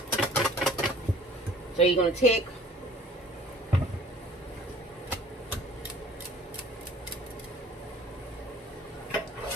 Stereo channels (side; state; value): both; normal; correlation 0.51